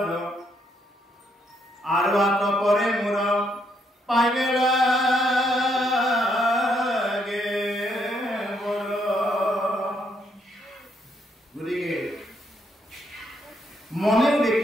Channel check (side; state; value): both; normal; correlation 0.74